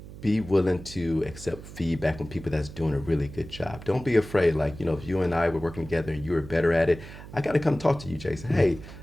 Be willing to accept feedback from people that's doing a really good job. Don't be afraid. Like, if you and I were working together and you were better at it, I got to come talk to you, Jason. Hey,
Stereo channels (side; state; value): right; noise; hum, 15 dB below the sound